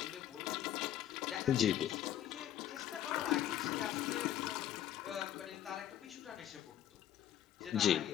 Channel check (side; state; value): right; quieter; 11.5 dB